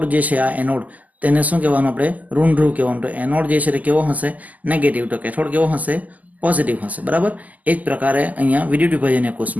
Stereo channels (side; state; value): left; late; 0.079 ms